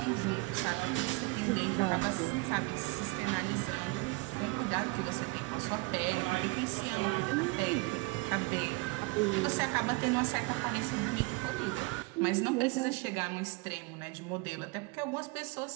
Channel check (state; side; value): quieter; left; 25.5 dB